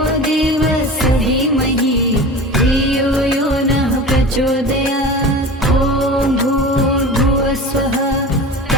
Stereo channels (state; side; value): normal; both; correlation 0.34